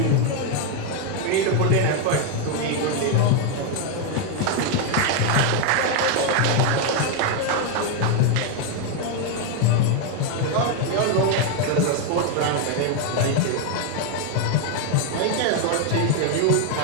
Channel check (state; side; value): different; both; correlation 0.01